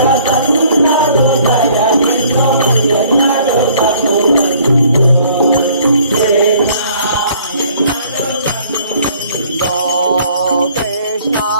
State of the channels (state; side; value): inverted; both; correlation -0.58